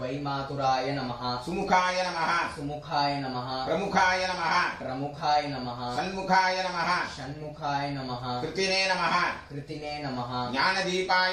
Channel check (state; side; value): identical; both; correlation 1.00